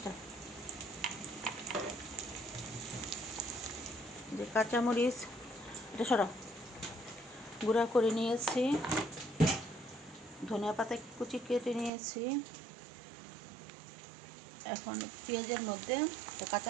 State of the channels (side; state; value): left; drops out; at 11.9 s